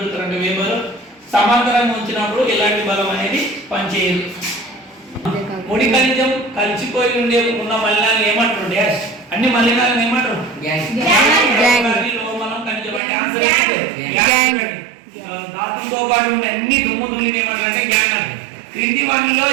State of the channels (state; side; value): drops out; left; at 13.0 s